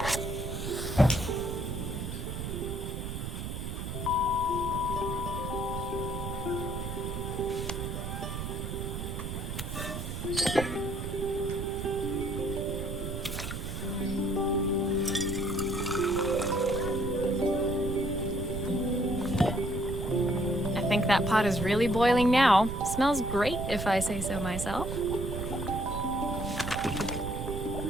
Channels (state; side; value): noise; right; rumble, 5 dB below the sound